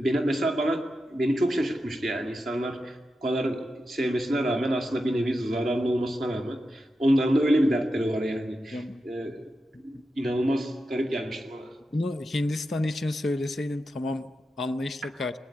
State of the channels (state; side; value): normal; both; correlation 0.89